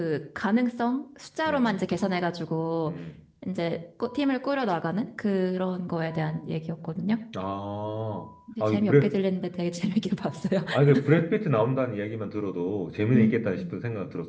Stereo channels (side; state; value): both; identical; correlation 1.00